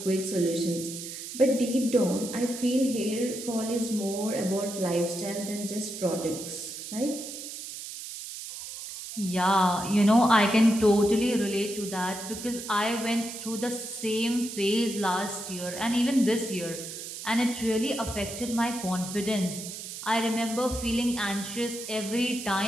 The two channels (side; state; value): right; noise; hiss, 9 dB below the sound